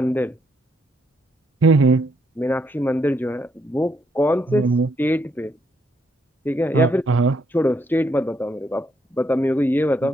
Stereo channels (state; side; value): normal; both; correlation 0.74